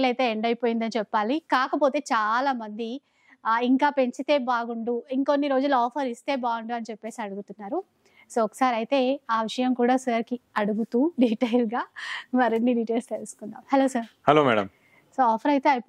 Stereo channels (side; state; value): both; identical; correlation 1.00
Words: అయితే ఎండ్ అయిపోయిందని చెప్పాలి. కాకపోతే చాలా మంది ఇంకా పెంచితే బాగుండు, ఇంకొన్ని రోజులు ఆఫర్ ఇస్తే బాగుండు అని చెప్పేసి అడుగుతున్నారు. సో ఒకసారి అయితే ఆ విషయం కూడా సార్కి అడుగుతూ డీటెయిల్గా మరిన్ని డీటెయిల్స్ తెలుసుకుందాం. Hello sir. Hello madam. So offer అయితే